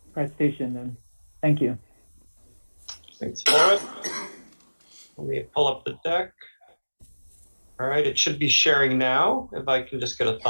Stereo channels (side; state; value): both; inverted; correlation -1.00